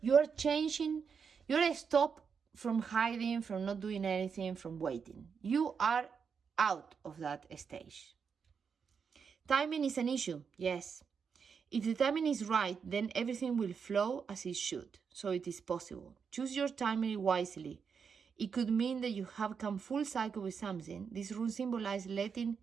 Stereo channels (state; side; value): quieter; left; 6.2 dB